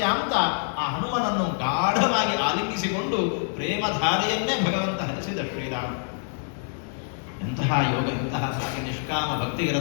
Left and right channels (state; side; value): silent; right; 61 dB below the other